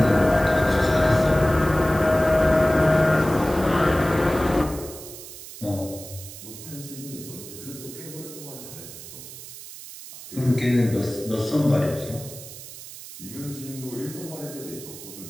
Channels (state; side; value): noise; right; hiss, 14 dB below the sound